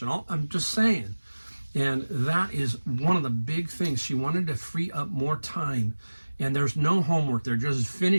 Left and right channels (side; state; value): both; inverted; correlation -1.00